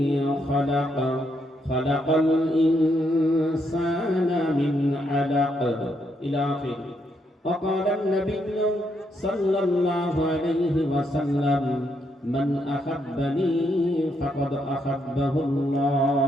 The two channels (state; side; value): normal; both; correlation 0.77